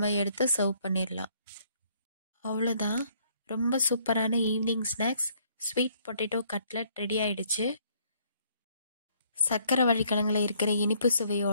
எடுத்து சர்வ் பண்ணிடலாம். அவ்வளோதான். ரொம்ப சூப்பரான evening snacks sweet potato cutlet ready ஆயிடுச்சு. சக்கரவள்ளி கிழங்குல இருக்கிற இனிப்பு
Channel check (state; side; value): inverted; both; correlation -0.65